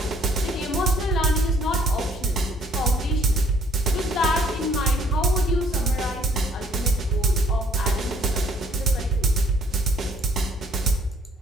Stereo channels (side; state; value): both; normal; correlation 0.60